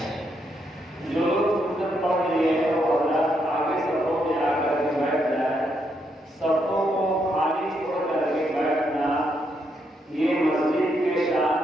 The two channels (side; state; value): both; normal; correlation 0.78